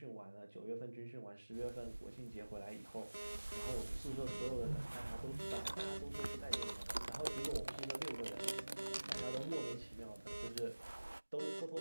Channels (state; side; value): inverted; both; correlation -1.00